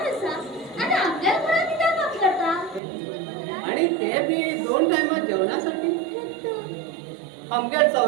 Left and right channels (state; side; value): drops out; left; at 2.8 s